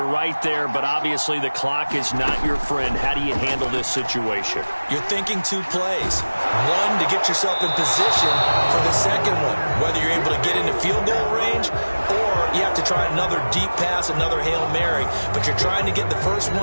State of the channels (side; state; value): both; inverted; correlation -1.00